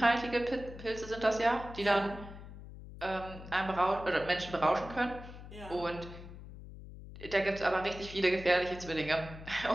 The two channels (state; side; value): noise; left; hum, 14 dB below the sound